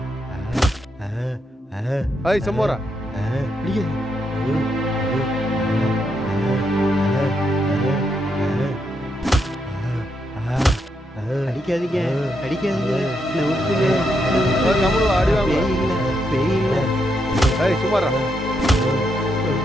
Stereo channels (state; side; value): normal; both; correlation 0.80